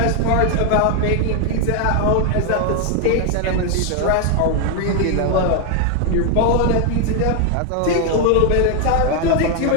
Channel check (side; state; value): both; different; correlation 0.01